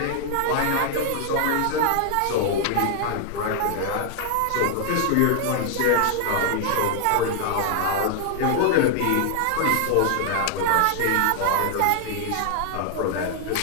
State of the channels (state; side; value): different; both; correlation 0.00